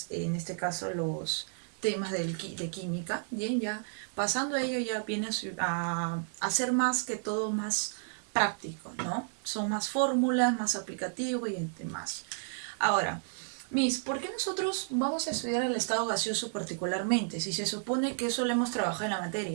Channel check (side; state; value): left; silent; digital silence